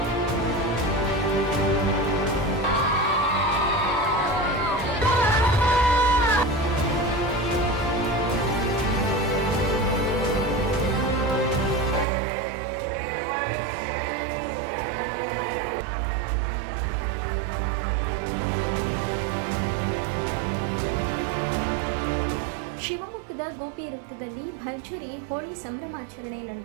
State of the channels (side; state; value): left; drops out; at 12.1 s